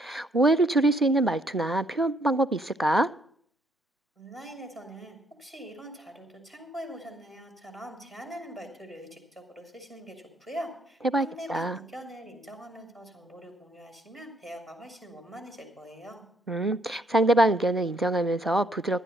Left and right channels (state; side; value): normal; both; correlation 0.69